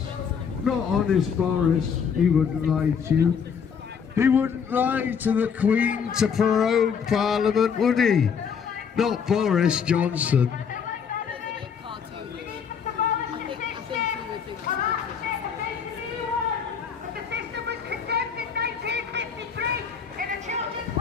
Not honest Boris, he wouldn't lie to you. He wouldn't lie to the Queen to prorogue Parliament, would he? Not Boris Johnson.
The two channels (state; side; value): quieter; right; 6.8 dB